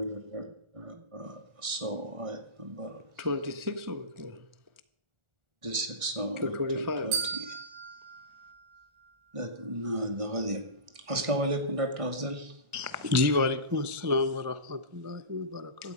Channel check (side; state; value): left; late; 1.4 ms